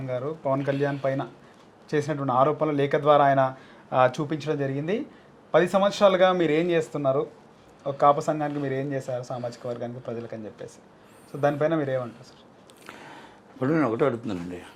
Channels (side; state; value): both; identical; correlation 1.00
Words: గారు పవన్ కళ్యాణ్ పైన చేసినటువంటి ఆరోపణలు లేఖ ద్వారా ఆయన చూపించడం జరిగింది. 10 సంవత్సరాలుగా మీరు ఏం చేస్తున్నారు, ఒక కాపు సంఘానికి మీరు ఏం చేశారు, సామాజిక వర్గానికి, ప్రజలకు అని చెప్పేసి. సో దానిపైన మీరు ఏమంటారు సార్? ఇప్పుడు నేను ఒకటే అడుగుతున్నానండి,